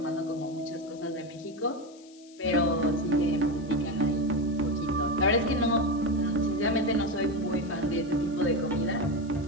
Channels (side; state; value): left; noise; hiss, 25 dB below the sound